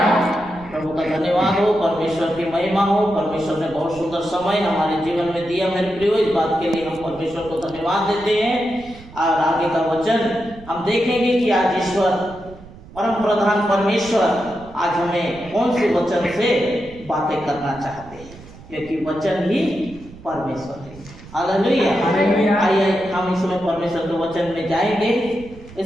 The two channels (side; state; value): right; noise; rumble, 19 dB below the sound